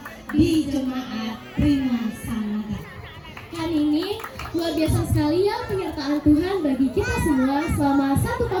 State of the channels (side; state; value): both; identical; correlation 1.00